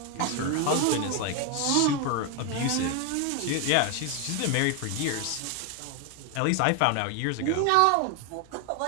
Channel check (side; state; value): both; different; correlation 0.01